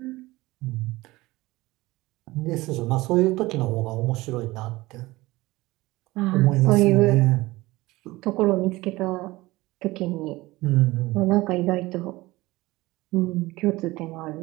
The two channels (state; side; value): quieter; left; 19.8 dB